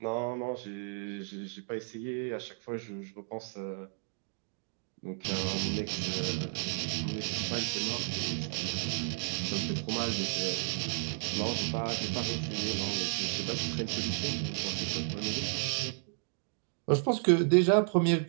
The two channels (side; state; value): left; silent; 56 dB below the other